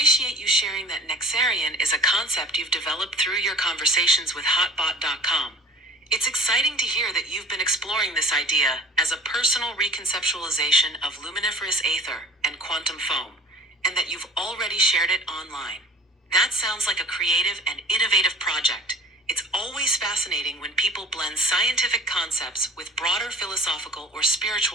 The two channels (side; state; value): both; normal; correlation 0.46